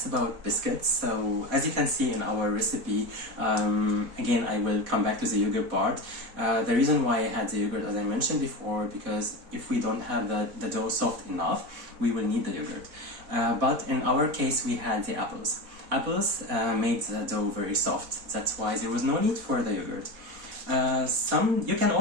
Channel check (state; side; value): late; left; 4.1 ms